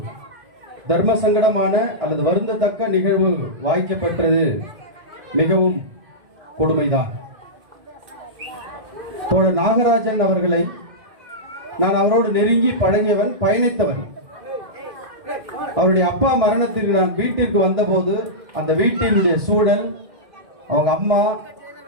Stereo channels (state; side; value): late; left; 1.6 ms